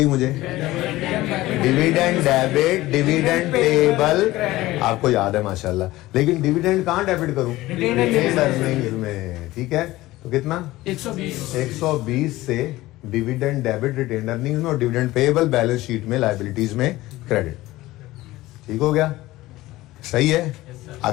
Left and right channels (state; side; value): quieter; right; 17.6 dB